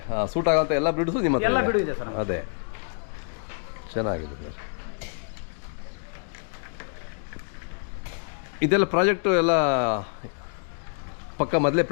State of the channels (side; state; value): right; silent; 60 dB below the other